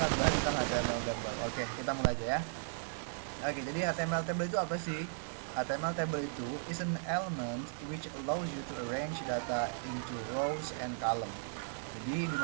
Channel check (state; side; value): silent; left; digital silence